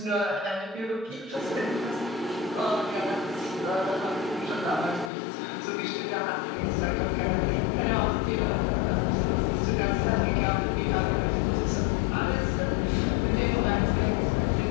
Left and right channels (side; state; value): right; drops out; at 5.1 s